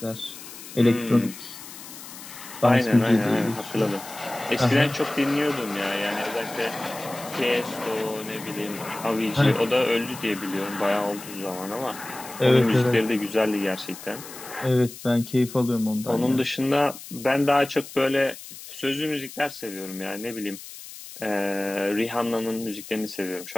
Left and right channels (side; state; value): left; noise; hiss, 14 dB below the sound